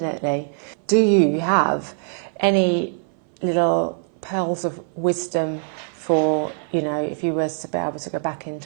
Yeah. Do you have any little pearls of wisdom for, you know, if you were to be able to go back in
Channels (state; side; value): silent; left; 58 dB below the other